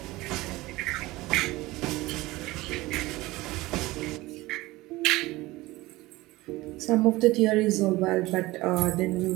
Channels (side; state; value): left; quieter; 19.6 dB